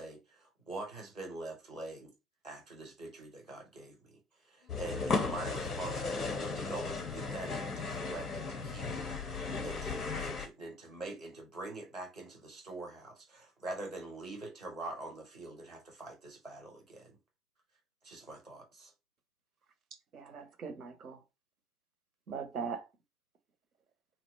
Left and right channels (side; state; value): both; normal; correlation 0.55